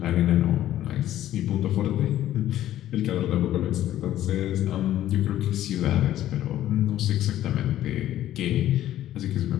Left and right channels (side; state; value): right; quieter; 12.8 dB